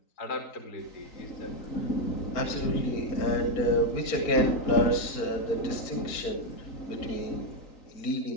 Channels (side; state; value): right; late; 4.4 ms